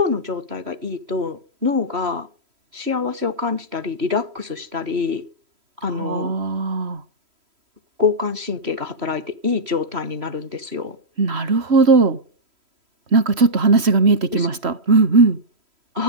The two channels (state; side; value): late; left; 3.1 ms